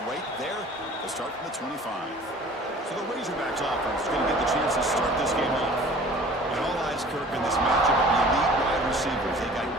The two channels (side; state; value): both; normal; correlation 0.47